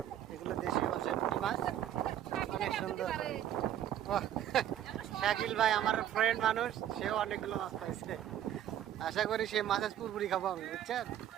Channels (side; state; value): left; quieter; 11.2 dB